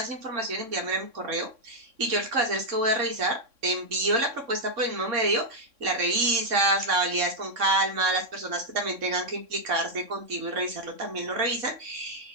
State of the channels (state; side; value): late; left; 3.6 ms